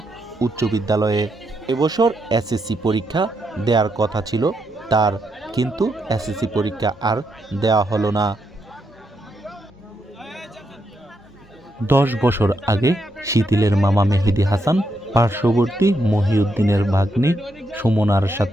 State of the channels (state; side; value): normal; both; correlation 0.81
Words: উচ্চ বিদ্যালয়ে। এবছর SSC পরীক্ষা দেওয়ার কথা ছিল তার, কিন্তু SSC পরীক্ষা আর দেওয়া হলো না। 10 বছর আগে শিথিলের মামা মেহেদি হাসান পার্শ্ববর্তী মহিউদ্দিনের ভাগ্নি সুমনার